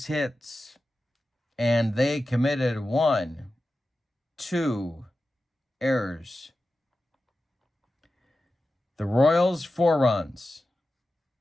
hits, and they committed 1, 2 errors. The Royals, 4 runs,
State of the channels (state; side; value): normal; both; correlation 0.93